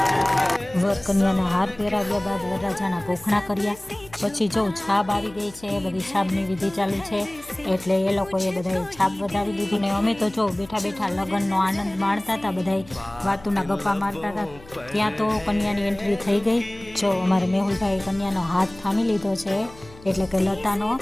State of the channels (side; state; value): left; noise; hum, 22 dB below the sound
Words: વર કન્યાના હાર પહેરાવ્યા બાદ વરરાજાના ભોખણા કર્યા। પછી જો છાપ આવી ગઈ છે, બધી છાપની વિધિ ચાલુ છે એટલે એ લોકોએ બધાએ છાપ વધાવી લીધી ને અમે તો જો બેઠા બેઠા લગ્નનો આનંદ માણતા હતા, બધાએ વાતુના ગપ્પા મારતા હતા। ત્યાં તો કન્યાની એન્ટ્રી થઈ ગઈ। જો અમારે મેહુલભાઈ કન્યાનો હાથ થામી લીધો છે એટલે કે લતાનો,